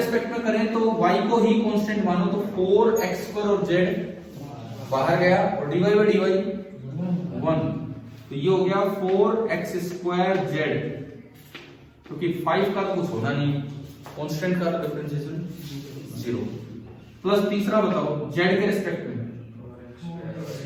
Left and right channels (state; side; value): identical; both; correlation 1.00